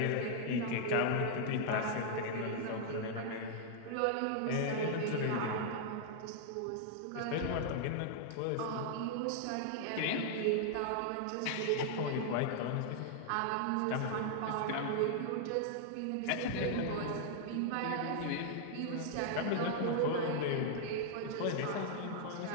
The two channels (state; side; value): different; both; correlation -0.01